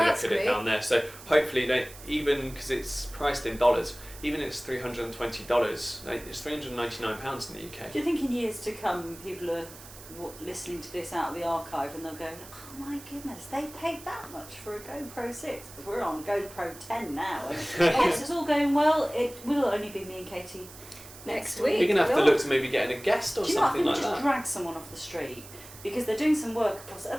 it down there. So hopefully, even because it's priced in dollars, even if it's $320, it's £399 in the UK. Do you think in years to come, people are listening to this out of the archive, and they'll go, "Oh my goodness, they paid that much for a GoPro 6? Because we're on GoPro 10 now. And yes, it's all going well. It will only be me and Katie next week. You're going to have to look to maybe getting a guest or something like that. Just drag someone off the street, because they're doing some work across.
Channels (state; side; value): noise; right; hiss, 17 dB below the sound